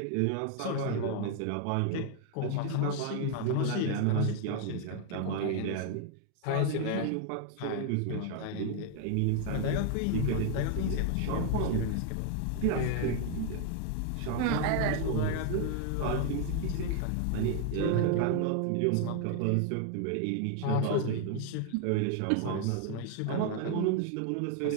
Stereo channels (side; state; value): both; different; correlation 0.00